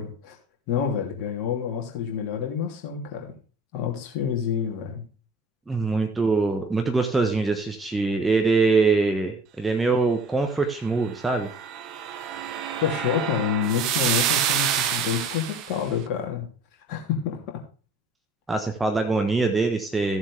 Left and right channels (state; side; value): normal; both; correlation 0.47